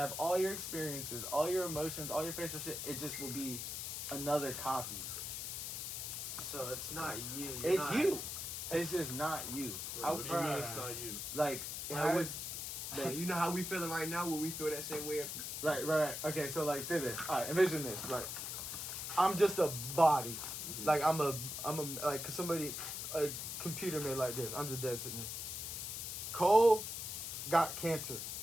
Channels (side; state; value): left; noise; hiss, 5 dB below the sound